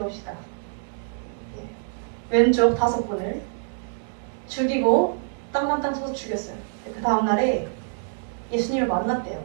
왼쪽 5분을 죽이고 땅만땅 쳐서 죽였어요. 그 다음날에 예수님을 만났대요.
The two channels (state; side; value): silent; left; 61 dB below the other